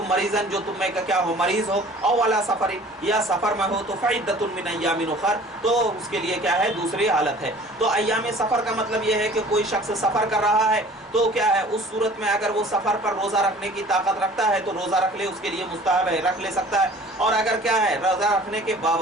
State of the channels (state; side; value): normal; both; correlation 0.48